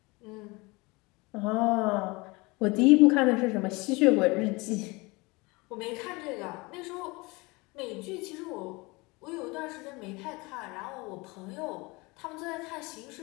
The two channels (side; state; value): right; quieter; 25.0 dB